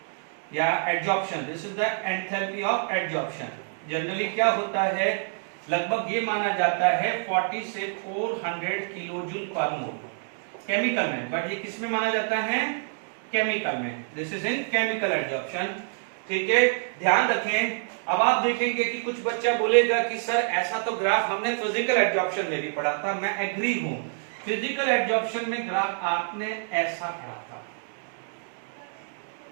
या absorption, this is the enthalpy of absorption. Generally क्या होता है, लगभग ये माना जाता है 40 से 400 किलो जूल पर मोल केमिकल में, बट ये किस में माना जाता है, केमिकल में। This is in chemical absorption. ठीक है, ध्यान रखें। अब आप देखेंगे कि कुछ बच्चा बोलेगा कि सर ऐसा तो ग्राफ हमने फिजिकल एब्जॉर्प्शन में भी पढ़ा था। मैं एग्री हूं, फिजिकल एब्जॉर्प्शन में ग्राफ आपने ऐसा पढ़ा था,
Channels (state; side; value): silent; left; digital silence